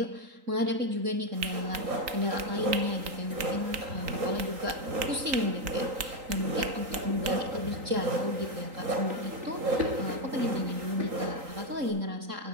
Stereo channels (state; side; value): late; left; 3.8 ms